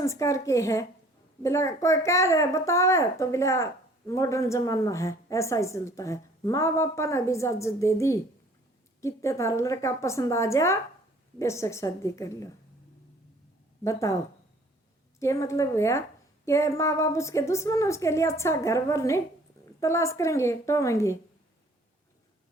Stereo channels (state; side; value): normal; both; correlation 0.55